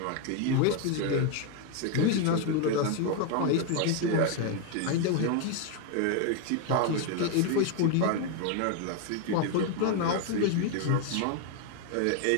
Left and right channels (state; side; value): different; both; correlation 0.01